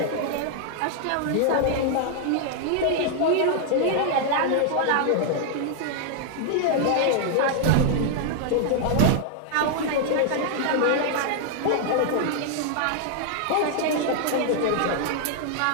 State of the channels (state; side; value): different; both; correlation 0.00